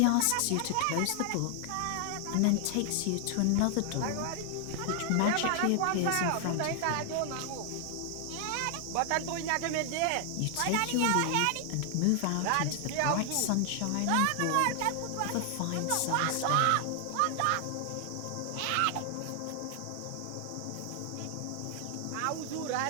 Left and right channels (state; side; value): different; both; correlation 0.00